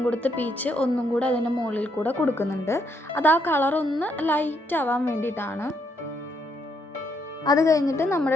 കൊടുത്ത പീച്ച് ഒന്നും കൂടെ അതിൻ്റെ മുകളിൽ കൂടെ കൊടുക്കുന്നുണ്ട്. അത് ആ കളർ ഒന്ന് ലൈറ്റ് ആവാൻ വേണ്ടിയിട്ടാണ്. അത് കഴിഞ്ഞിട്ട്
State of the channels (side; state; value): both; normal; correlation 0.75